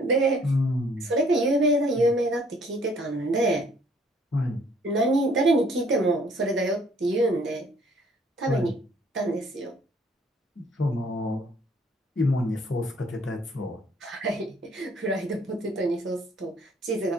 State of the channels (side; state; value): both; normal; correlation 0.61